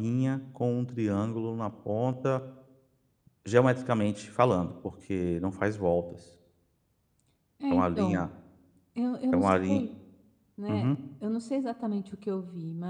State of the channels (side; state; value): both; identical; correlation 1.00